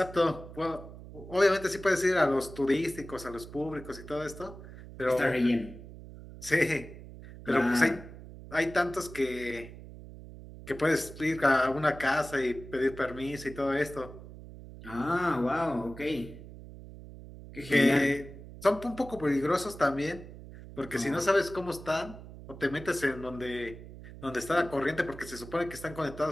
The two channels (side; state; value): right; noise; hum, 15 dB below the sound